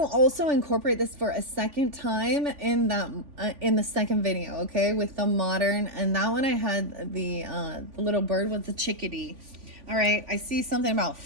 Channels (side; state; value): left; late; 3.5 ms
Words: also incorporate this for a second time in the second video. Okay, with the modern, and that one I had the little bird with the chickadee. All right. I see something about